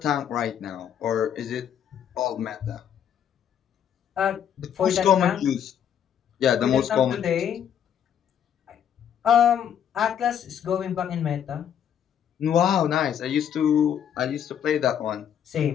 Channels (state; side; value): quieter; right; 9.1 dB